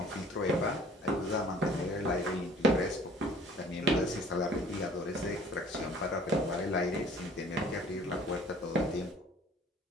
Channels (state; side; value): normal; both; correlation 0.53